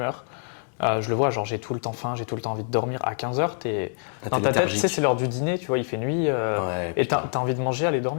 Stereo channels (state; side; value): silent; right; digital silence